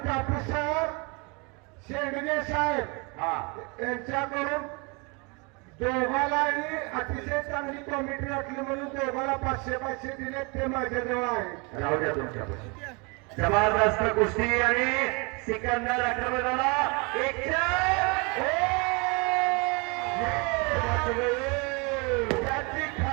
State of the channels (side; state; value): left; quieter; 30.3 dB